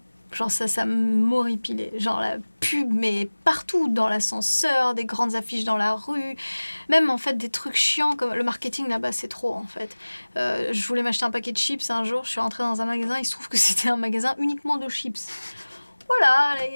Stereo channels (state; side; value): inverted; both; correlation -1.00